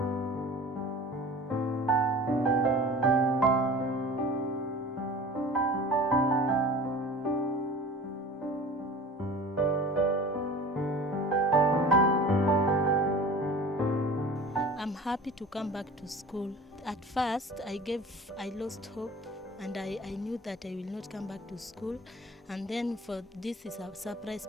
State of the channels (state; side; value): normal; both; correlation 0.40